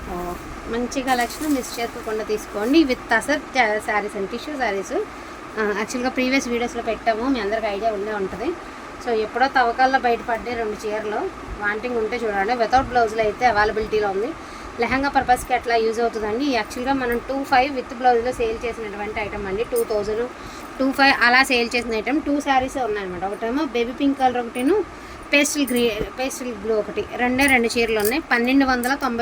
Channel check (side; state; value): both; identical; correlation 1.00